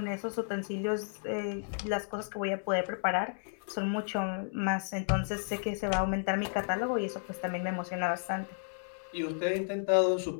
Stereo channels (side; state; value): right; silent; digital silence